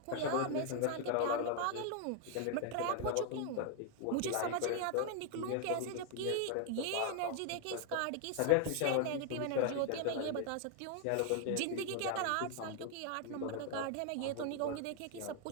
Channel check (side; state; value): both; different; correlation 0.00